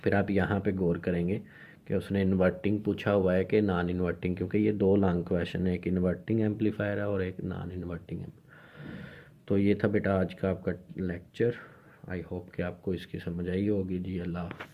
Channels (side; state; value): both; identical; correlation 1.00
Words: फिर आप यहाँ पे गौर करेंगे कि उसने इन्वर्टिंग पूछा हुआ है कि नॉन इन्वर्टिंग, क्योंकि ये दो लॉन्ग क्वेश्चन है, एक इन्वर्टिंग एम्पलीफायर है और एक नॉन इन्वर्टिंग है। तो ये था बेटा आज का आपका लेक्चर। आई होप कि आपको इसकी समझ आई होगी जी। अल्लाह